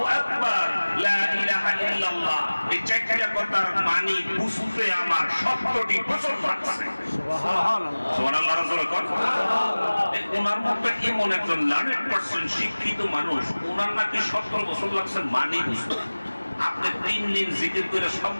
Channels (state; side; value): inverted; both; correlation -1.00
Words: আকবার, লা ইলাহা ইল্লাল্লাহ। এই চারটা কথার মানি বুঝতে আমার 70টি বছর লাগছে। সুবহানাল্লাহ। রাসূল কোন ওনার মতো এমন একজন 100% শিক্ষিত মানুষ, ওনার নাকি 70 বছর লাগছে মানি বুঝতে। আপনি 3 দিন জিকির করে সব